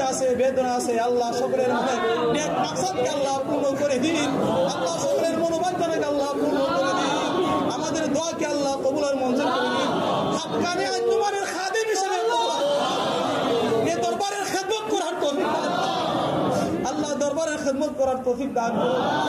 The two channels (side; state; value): both; identical; correlation 1.00